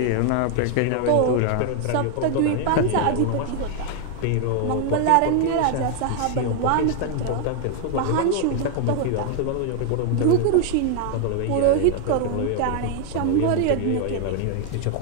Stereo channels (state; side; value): different; both; correlation 0.00